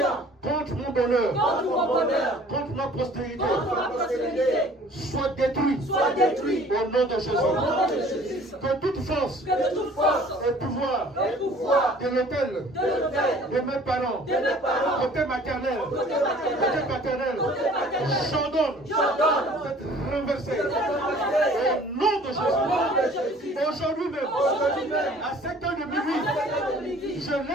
contre mon bonheur, contre ma postérité, soit détruit au nom de Jésus. Que toute force et pouvoir de l'autel de mes parents, côté maternel, côté paternel, j'ordonne d'être renversé au nom de Jésus. Aujourd'hui même, à 7 heures de minuit, je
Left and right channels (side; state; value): both; normal; correlation 0.51